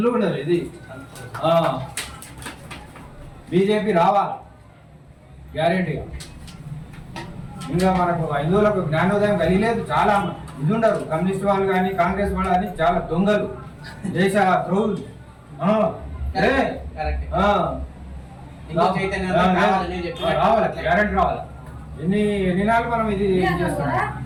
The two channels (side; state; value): both; identical; correlation 1.00